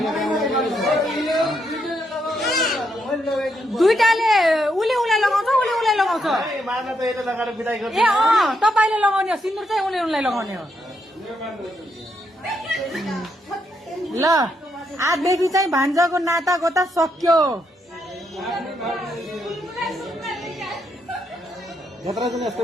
दुईटाले उसले उसलाई लगाउँछ, उसले उसलाई लगाउँछ। ए तपाईँले लगाउने हो, सिन्दुर चाहिँ उसले उसलाई लगाउने हो। ल आजदेखि चाहिँ भान्जाको नाता गोता सक्यो।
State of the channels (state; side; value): normal; both; correlation 0.78